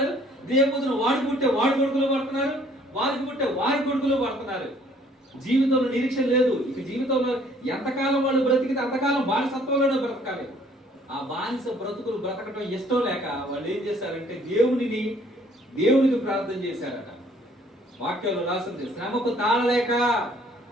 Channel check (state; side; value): normal; both; correlation 0.59